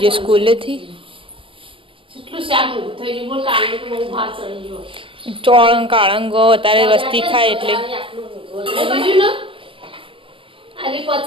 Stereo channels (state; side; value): late; left; 0.25 ms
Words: જે સ્કૂલેથી ચોળંગ કાળંગો અત્યારે વસ્તી ખાય એટલે